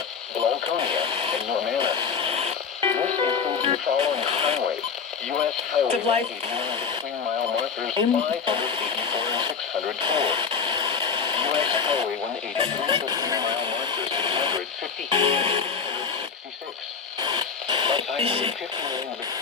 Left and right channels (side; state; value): right; quieter; 5.9 dB